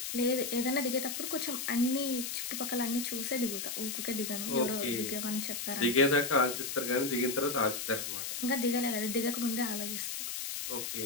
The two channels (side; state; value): left; noise; hiss, 4 dB below the sound